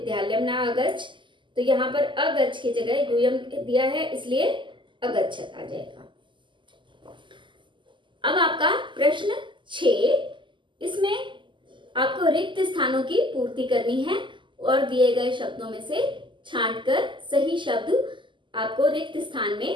न अगच्छ, तो यहाँ पर अगच्छ की जगह यूयम दिया है इसलिए अगच्छत आ जाएगा। अब आपका प्रश्न 6, इसमें आपको रिक्त स्थानों की पूर्ति करनी है और दिए गए शब्दों में से छांटकर सही शब्द आपको रिक्त स्थान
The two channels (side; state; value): left; late; 0.24 ms